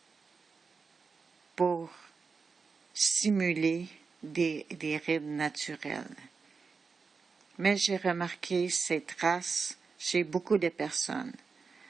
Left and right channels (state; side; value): quieter; left; 5.0 dB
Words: pour simuler des rides naturelles. Mais j'ai remarqué ces traces chez beaucoup de personnes.